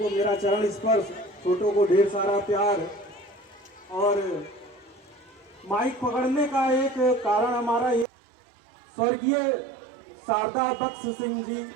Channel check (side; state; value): left; drops out; at 8.1 s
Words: मेरा चरण स्पर्श, छोटों को ढेर सारा प्यार। और माइक पकड़ने का एक कारण हमारा ये, स्वर्गीय शारदा बख्श सिंह जी